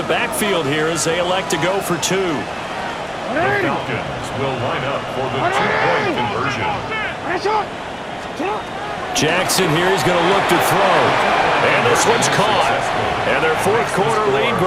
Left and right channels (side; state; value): both; identical; correlation 1.00